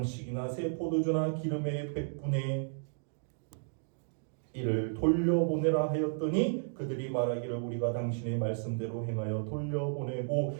새 포도주나 기름의 100분의 1을 돌려보내라 하였더니 그들이 말하기를 우리가 당신의 말씀대로 행하여 돌려보내고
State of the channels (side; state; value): left; silent; digital silence